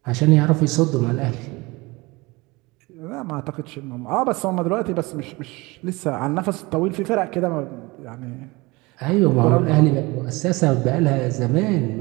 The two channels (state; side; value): quieter; left; 23.6 dB